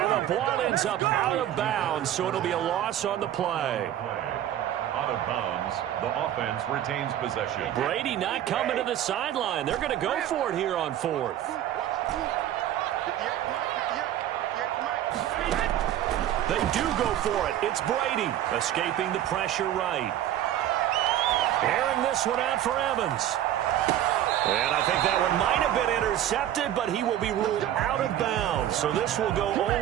the ball ends up out of bounds, so it'll be a loss on the play. Out of bounds, the offense retains possession. Brady not coming to the sideline. They're going to go for it here on 4th. They do go for it. It's Brady escaping the pressure right. Airing this one out for Evans. And I think that one might have been intercepted, but he will be ruled out of bounds. So this will go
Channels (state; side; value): quieter; left; 11.8 dB